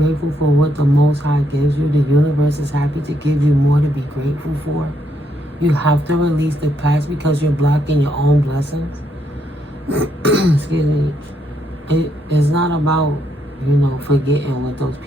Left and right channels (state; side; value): normal; both; correlation 0.75